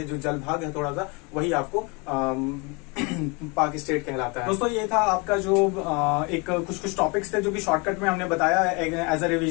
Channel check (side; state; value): right; quieter; 29.7 dB